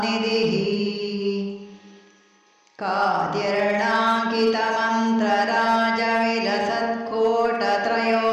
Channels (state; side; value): identical; both; correlation 1.00